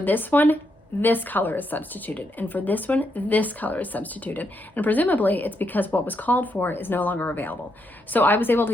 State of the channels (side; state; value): both; normal; correlation 0.79